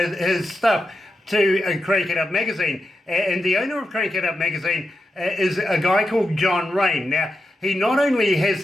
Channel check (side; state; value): both; normal; correlation 0.87